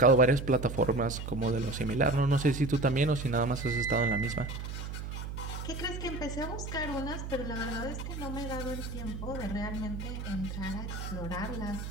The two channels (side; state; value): right; noise; hum, 6 dB below the sound